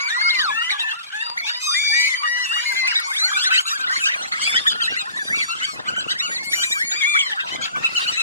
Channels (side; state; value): both; inverted; correlation -0.48